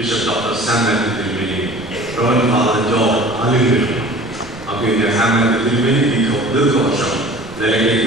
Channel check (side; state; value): right; noise; rumble, 20 dB below the sound